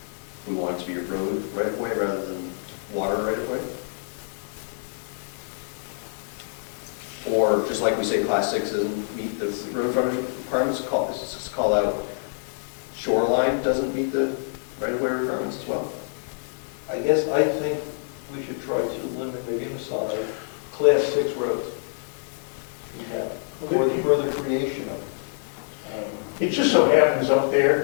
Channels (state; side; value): silent; right; digital silence